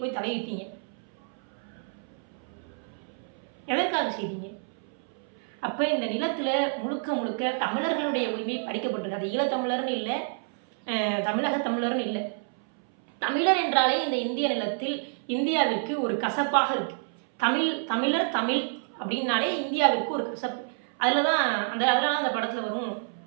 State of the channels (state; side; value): silent; left; 59 dB below the other